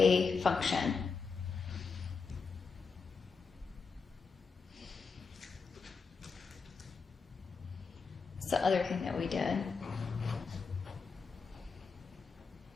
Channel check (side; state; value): right; quieter; 5.0 dB